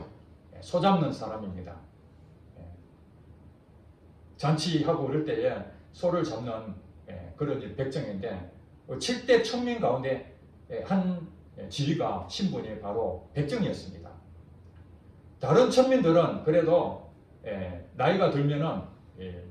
소 잡는 사람입니다. 잔치하고 그럴 때에 소를 잡는 그런 백정인데 7대 천민 가운데 한 지위가 신분이 바로 백정이었습니다. 다른 천민들은 그래도 나이가 들면은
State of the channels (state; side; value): identical; both; correlation 1.00